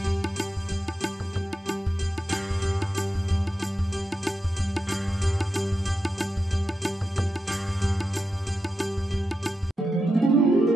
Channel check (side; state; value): both; normal; correlation 0.88